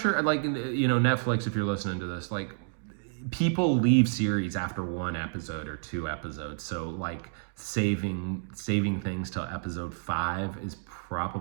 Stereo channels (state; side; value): silent; left; digital silence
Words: like, Netflix, if you're listening to this, like, people leave series after 1 episode or 2 episodes. So like saving things till episode 5 is